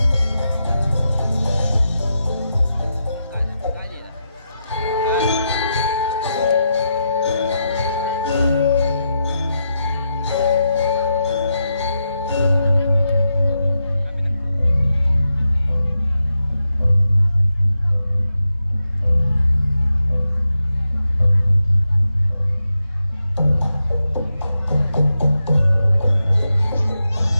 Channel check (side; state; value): both; inverted; correlation -0.86